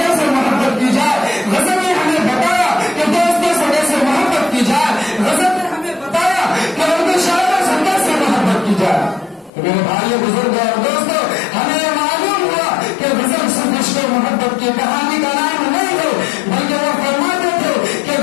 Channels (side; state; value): right; drops out; at 9.5 s